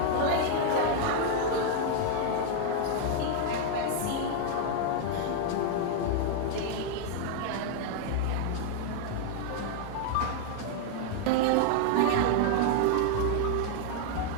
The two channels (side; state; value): both; different; correlation 0.00